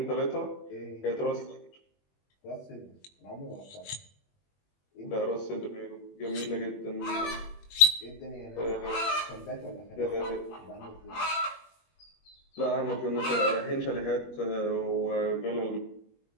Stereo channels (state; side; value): late; right; 21 ms